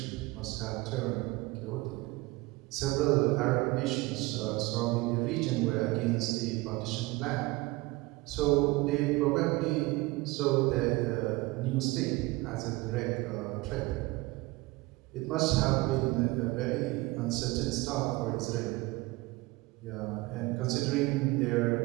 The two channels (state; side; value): quieter; left; 22.0 dB